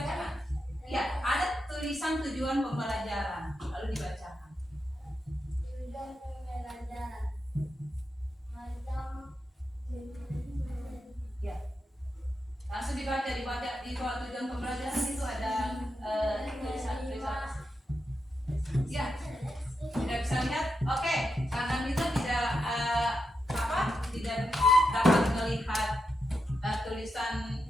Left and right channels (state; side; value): normal; both; correlation 0.86